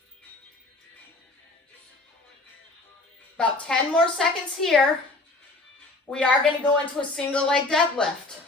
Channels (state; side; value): quieter; right; 3.1 dB